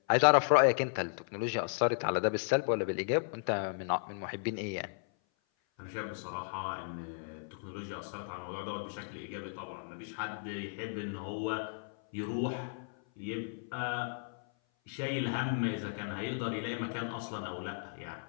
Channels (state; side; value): silent; right; 55 dB below the other